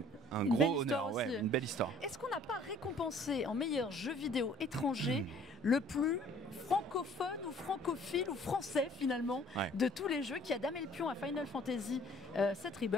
gros honneur, une belle histoire. Est-ce qu'on n'a pas récompensé en meilleur jeu vidéo étranger le plus francophone ou francophile ou français finalement de tous les jeux qui a damé le pion à Final Fantasy VII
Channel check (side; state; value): both; normal; correlation 0.55